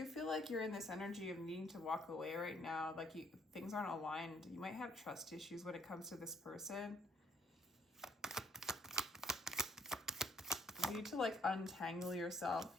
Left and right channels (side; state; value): both; normal; correlation 0.65